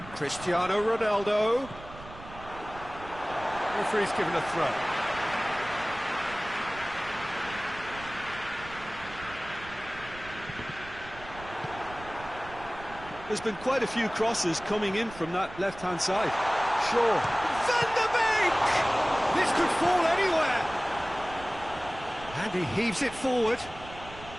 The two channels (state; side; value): noise; right; rumble, 16 dB below the sound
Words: Cristiano Ronaldo. Referee's given a throw. There's been quite a few crosses coming in from that left-hand side. Sure. Van der Beek! This could fall anywhere. And he heaves it forward.